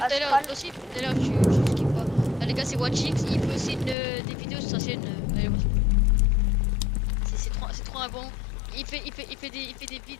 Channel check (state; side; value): drops out; right; at 4.0 s